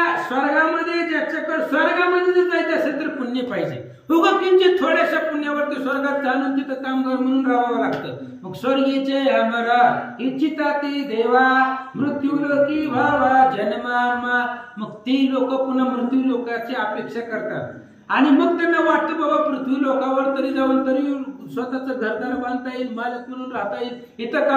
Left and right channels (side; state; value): both; identical; correlation 1.00